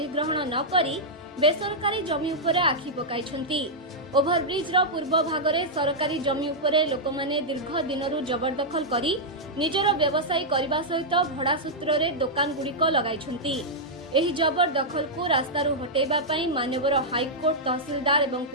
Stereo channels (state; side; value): normal; both; correlation -0.07